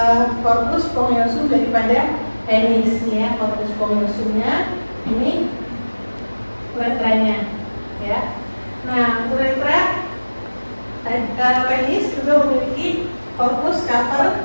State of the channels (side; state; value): both; inverted; correlation -1.00